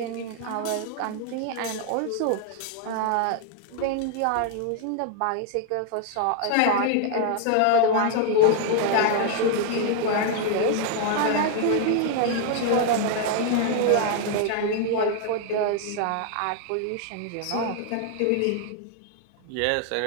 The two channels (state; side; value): different; both; correlation 0.00